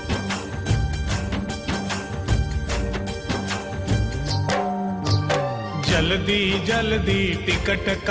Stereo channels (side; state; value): both; identical; correlation 1.00